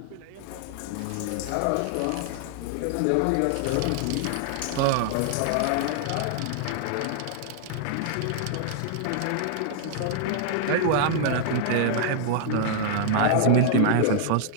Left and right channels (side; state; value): both; different; correlation -0.01